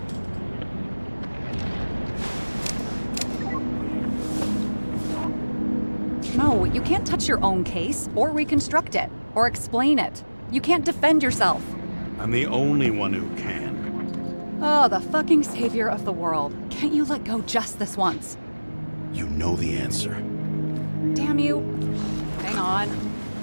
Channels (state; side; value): inverted; both; correlation -1.00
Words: No, you can't touch your own case, or reconstruct it, or explain it. You can't defend yourself. I'm the only one who can. Oh, the fucking savior of the world. Can't you let go just this once? You know the answer. Damn you. Hang on.